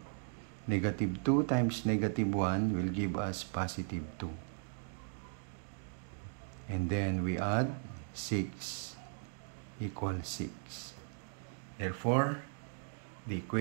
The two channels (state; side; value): silent; left; 53 dB below the other